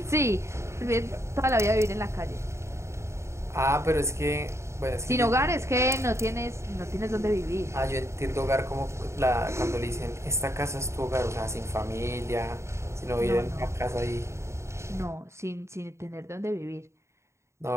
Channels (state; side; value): late; left; 0.14 ms